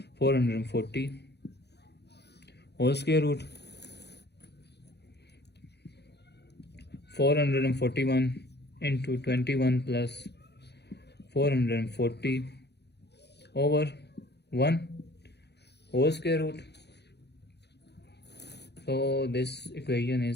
440 whole square root. 441 into 21 plus 440 over 1 whole square root. So this equation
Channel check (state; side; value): late; right; 0.49 ms